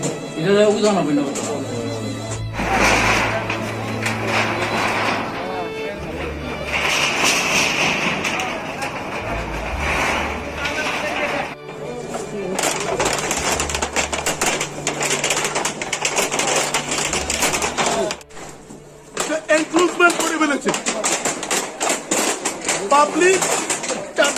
হয়? এটা উদাহরণ হবে না এনক্রোচমেন্ট করে ফেলেছে পাবলিক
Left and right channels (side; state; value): both; identical; correlation 1.00